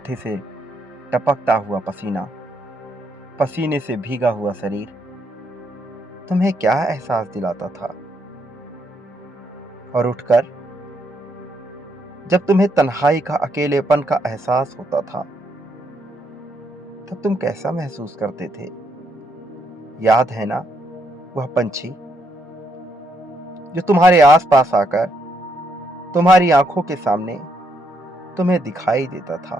से टपकता हुआ पसीना, पसीने से भीगा हुआ शरीर तुम्हें क्या एहसास दिलाता था? और उठकर जब तुम्हें तन्हाई का, अकेलेपन का एहसास होता था, तब तुम कैसा महसूस करते थे? याद है ना वह पंछी जो तुम्हारे आसपास आकर तुम्हारी आंखों के सामने तुम्हें दिखाई देता था?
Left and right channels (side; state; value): both; normal; correlation 0.75